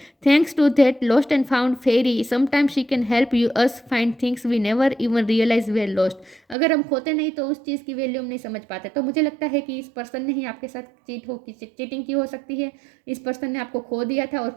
Thanks to that lost and found fairy sometimes she can help you us find things we never even realise we lost. अगर हम खोते नहीं तो उस चीज़ की वैल्यू हम नहीं समझ पाते। तो मुझे लगता है कि इस पर्सन ने ही आपके साथ चीटिंग की हो सकती है। इस पर्सन ने आपको खो दिया था और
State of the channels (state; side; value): drops out; left; at 6.6 s